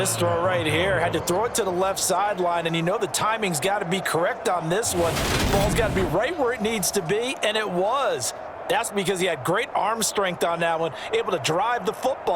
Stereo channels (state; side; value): identical; both; correlation 1.00